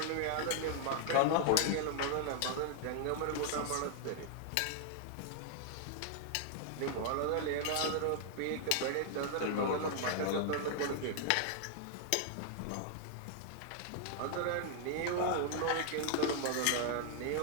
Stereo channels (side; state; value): both; different; correlation 0.00